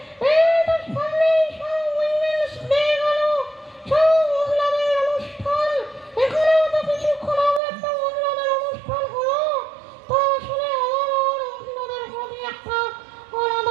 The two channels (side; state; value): left; drops out; at 7.6 s